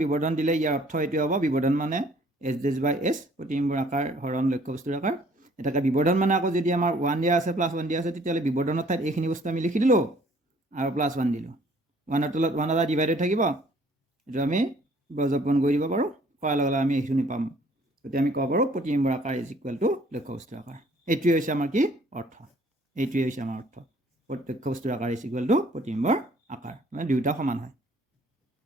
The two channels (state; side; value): normal; both; correlation 0.58